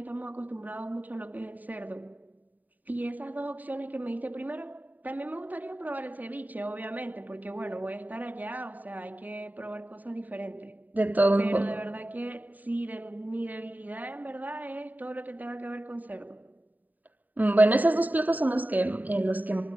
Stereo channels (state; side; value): late; left; 0.083 ms